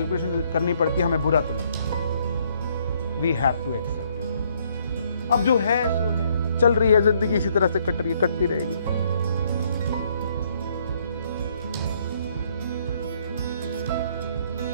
करनी पड़ती है हमें बुरा तो लगता है। We have to accept it. अब जो है सो है, चल रही है जिंदगी, इसी तरह से कट रही है, कटती रहेगी।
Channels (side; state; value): both; inverted; correlation -0.67